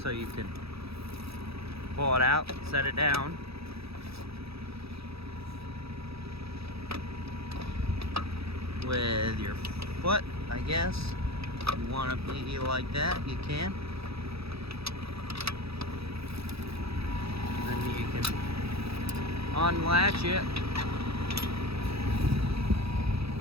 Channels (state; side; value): late; left; 0.77 ms